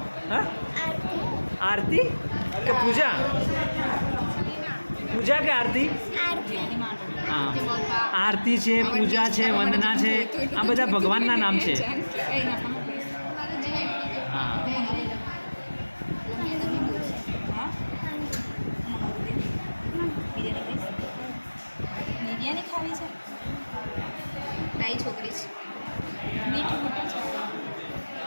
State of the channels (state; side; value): inverted; both; correlation -1.00